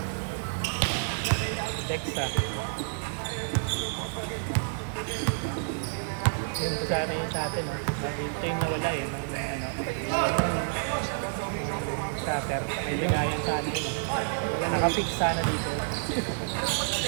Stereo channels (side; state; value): left; silent; digital silence